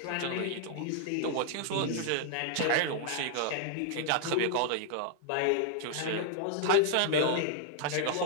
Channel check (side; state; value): both; different; correlation 0.00